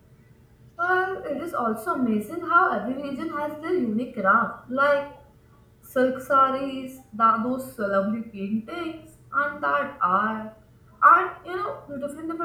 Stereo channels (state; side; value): identical; both; correlation 1.00